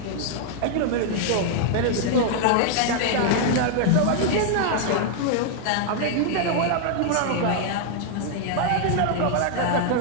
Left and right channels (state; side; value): different; both; correlation 0.00